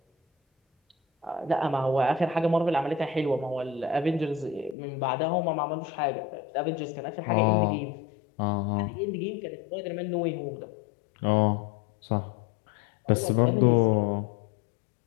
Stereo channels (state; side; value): drops out; right; at 4.8 s